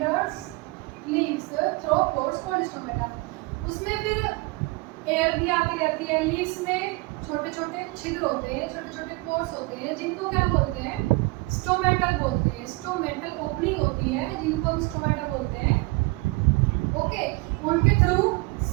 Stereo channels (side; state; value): left; quieter; 24.5 dB